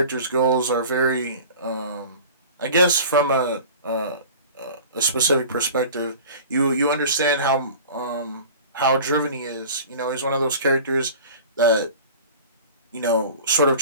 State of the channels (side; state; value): both; inverted; correlation -0.40